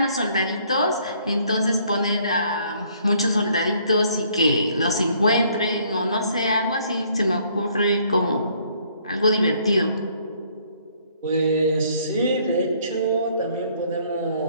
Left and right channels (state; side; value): inverted; both; correlation -0.64